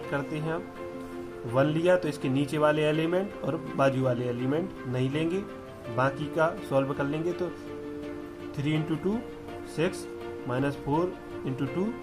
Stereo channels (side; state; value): both; identical; correlation 1.00